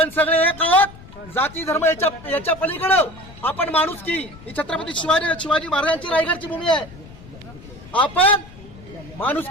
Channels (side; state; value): left; noise; rumble, 19 dB below the sound